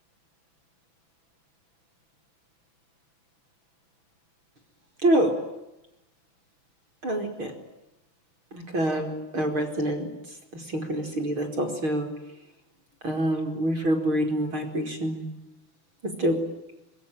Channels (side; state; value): left; late; 6.5 ms